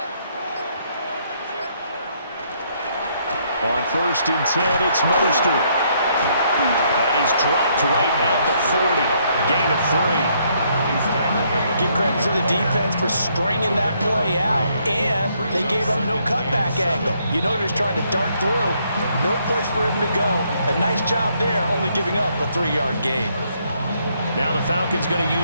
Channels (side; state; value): both; inverted; correlation -0.71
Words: On 1st and 10, it's Mostert. And he's dropped right at the 40. Gain of 3. Give credit to the defense for stringing that play out, and they gave up no cutback angle. You know he's trying to dart through. No place for him to go. A nice job there, only giving up a 3-yard gain. Now the Falcons going to